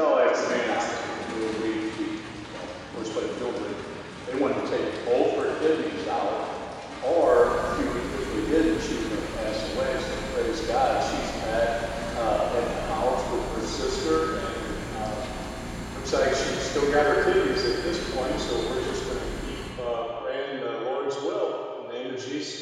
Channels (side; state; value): both; identical; correlation 1.00